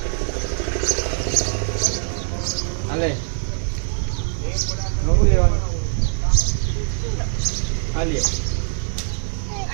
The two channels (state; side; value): silent; left; digital silence